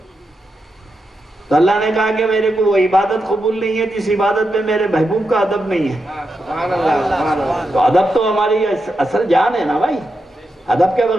तो अल्लाह ने कहा कि मेरे को वो इबादत कबूल नहीं है जिस इबादत में मेरे महबूब का अदब नहीं है। तो अदब तो हमारी असल जान है ना भाई, अदब के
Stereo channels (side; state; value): both; normal; correlation 0.86